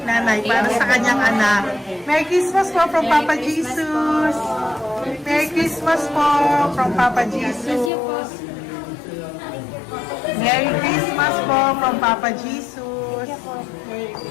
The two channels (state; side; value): drops out; right; at 7.9 s